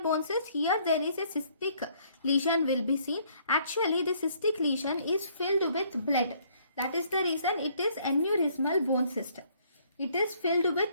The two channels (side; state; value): both; inverted; correlation -0.64